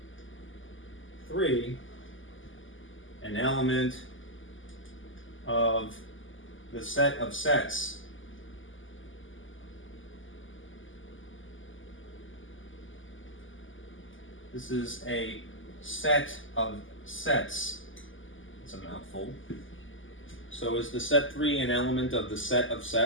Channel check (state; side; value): late; right; 0.57 ms